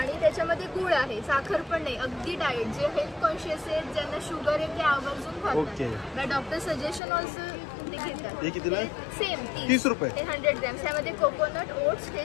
त्याच्यामध्ये गुळ आहे, साखर पण नाही, अगदी डाएट. जे हेल्थ कॉन्शियस आहेत, ज्यांना शुगर आहे ते आवर्जून खातात. ओके. डॉक्टर सजेशन ऑल्सो ते घेतात. हे कितीला आहे? सेम 30 रुपये. हे 100 ग्रॅम. त्यामध्ये कोकोनट ओट्स, हे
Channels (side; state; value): right; drops out; at 7.0 s